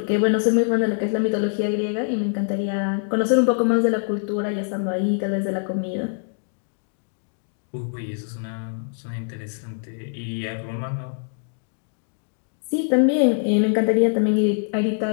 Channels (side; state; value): right; silent; digital silence